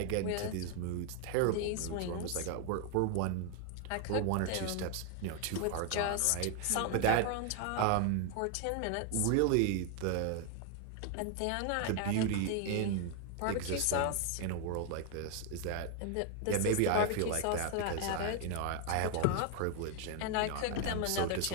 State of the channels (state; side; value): different; both; correlation 0.00